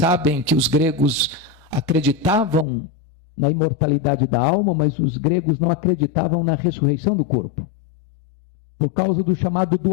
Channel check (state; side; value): drops out; right; at 2.7 s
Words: que os gregos acreditavam na imortalidade da alma, mas os gregos não acreditavam na ressurreição do corpo, por causa do chamado